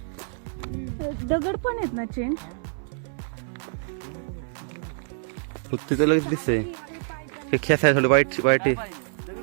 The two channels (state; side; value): silent; left; 60 dB below the other